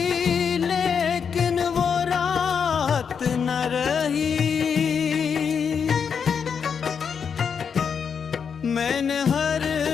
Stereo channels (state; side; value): quieter; right; 6.7 dB